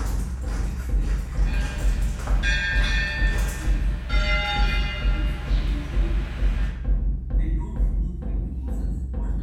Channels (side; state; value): both; identical; correlation 1.00